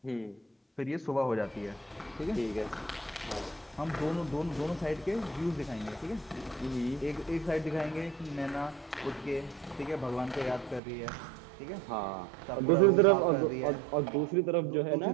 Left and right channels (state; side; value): drops out; left; at 10.8 s